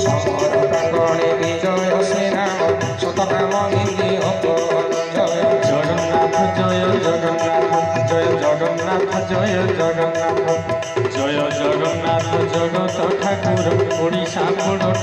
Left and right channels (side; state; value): both; identical; correlation 1.00